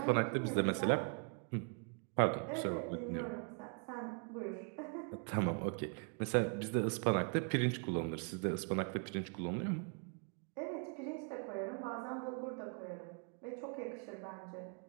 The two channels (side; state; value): left; quieter; 39.8 dB